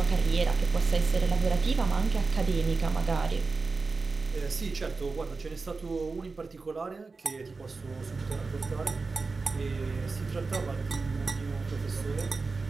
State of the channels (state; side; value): quieter; left; 4.1 dB